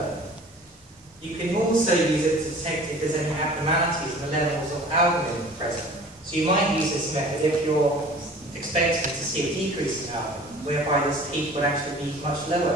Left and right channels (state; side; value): normal; both; correlation 0.45